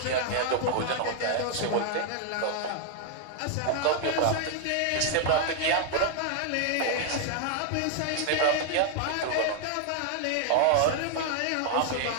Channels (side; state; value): both; different; correlation 0.00